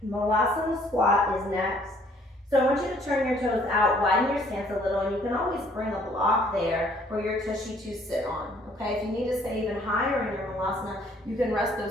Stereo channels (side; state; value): both; normal; correlation 0.61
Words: Malasana squat is next. So I want you to turn your toes out, widen your stance a little, and you can always bring a block there for your tushy to sit on, okay? If you need to stay even higher in your Malasana, you can rest